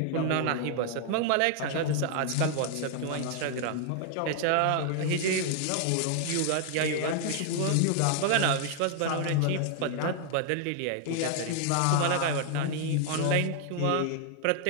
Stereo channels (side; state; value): both; different; correlation 0.00